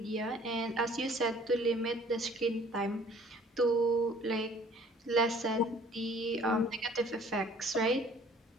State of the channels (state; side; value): normal; both; correlation 0.54